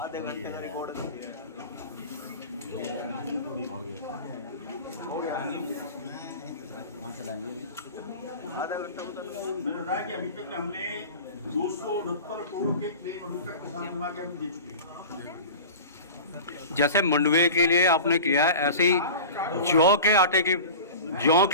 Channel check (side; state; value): both; inverted; correlation -0.35